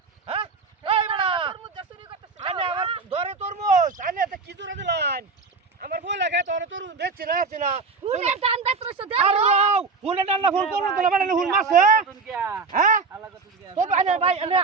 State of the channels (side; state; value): left; quieter; 4.4 dB